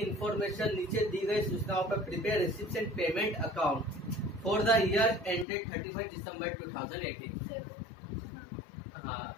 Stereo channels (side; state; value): right; drops out; at 5.5 s